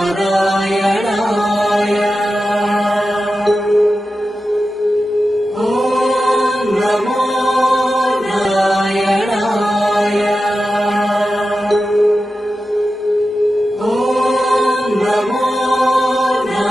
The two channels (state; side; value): normal; both; correlation 0.92